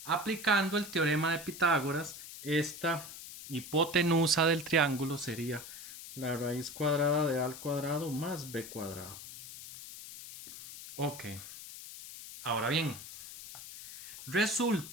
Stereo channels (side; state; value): left; noise; hiss, 13 dB below the sound